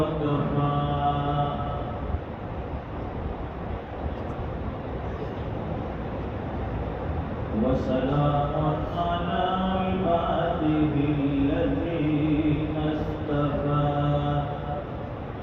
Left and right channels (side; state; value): both; identical; correlation 1.00